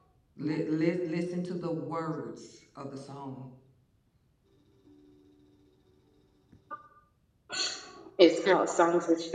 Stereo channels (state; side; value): identical; both; correlation 1.00